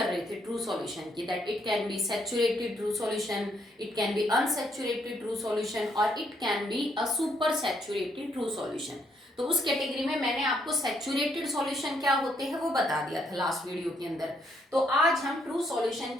रहे थे ट्रू सॉल्यूशन की, that it can be saturated true solution, it can be unsaturated true solution और it can be a super saturated true solution. तो उस कैटेगरी में मैंने आपको सैचुरेटेड सॉल्यूशन क्या होते हैं वो बता दिया था लास्ट वीडियो के अंदर। तो आज हम ट्रू सॉल्यूशन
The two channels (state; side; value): normal; both; correlation 0.72